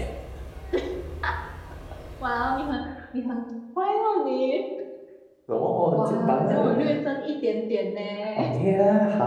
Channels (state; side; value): identical; both; correlation 1.00